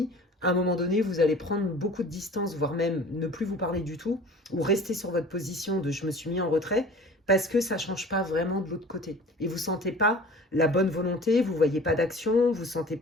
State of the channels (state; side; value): normal; both; correlation 0.43